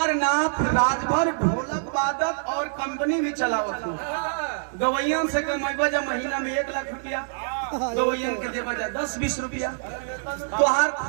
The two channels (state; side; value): silent; left; digital silence